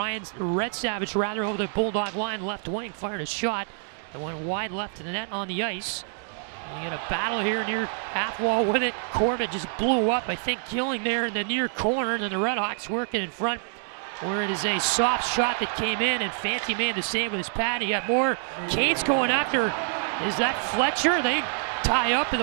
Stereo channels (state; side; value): silent; left; 60 dB below the other